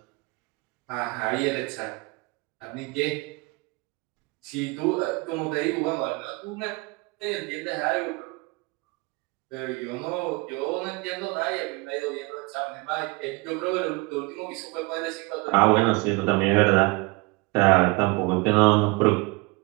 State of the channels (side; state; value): left; quieter; 25.9 dB